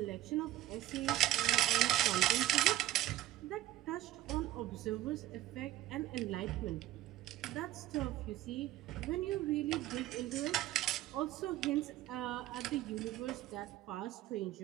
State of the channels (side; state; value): left; quieter; 14.7 dB